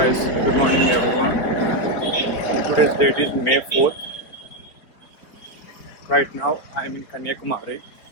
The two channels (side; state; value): right; late; 4.7 ms